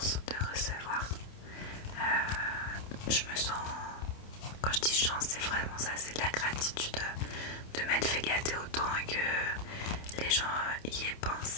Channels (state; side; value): late; right; 28 ms